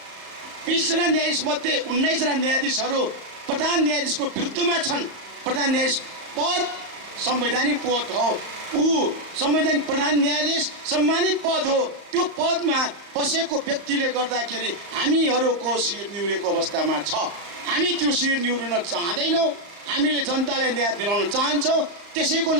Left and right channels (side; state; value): left; late; 35 ms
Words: 20 जना न्यायाधीश मध्ये 19 जना न्यायाधीशहरू प्रधान न्यायाधीशको विरुद्धमा छन्। प्रधान न्यायाधीश पद संवैधानिक पद हो, ऊ संवैधानिक प्रधान न्यायाधीश सम्मानित पद हो। त्यो पदमा बसेको व्यक्तिले गर्दाखेरि हामीहरूको शिर निहुरेको अवस्थामा छ। हामी त्यो शिर निहुर्न चाहँदैनौँ, हामीले जनतालाई न्याय दिलाउन चाहन्छौँ। त्यसैको